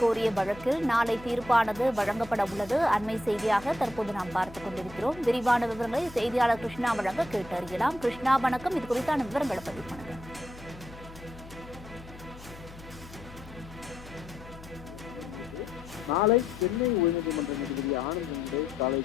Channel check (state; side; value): noise; left; hum, 17 dB below the sound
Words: வழக்கில் நாளை தீர்ப்பானது வழங்கப்பட உள்ளது. அண்மை செய்தியாக தற்போது நாம் பார்த்துக் கொண்டிருக்கிறோம். விரிவான விவரங்களை செய்தியாளர் கிருஷ்ணா வழங்க கேட்டறியலாம். கிருஷ்ணா, வணக்கம். இது குறித்தான விவரங்களை பதிவு பண்ணுங்க. நாளை சென்னை உயர்நீதிமன்ற நீதிபதி ஆனந்த் காலை